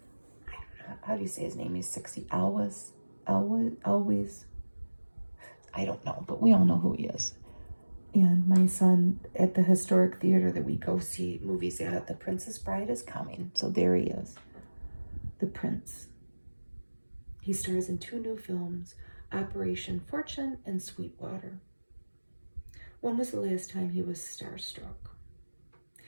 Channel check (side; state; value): both; inverted; correlation -1.00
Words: How do you say his name? He's 60. Always. I don't know, but we all know who he is. And my son at the historic theater that we go see movies at, The Princess Bride is coming. So there he is. The Prince. He stars in 2 new films, Operation Fortune and Sweetwater. When was the last time he was starstruck?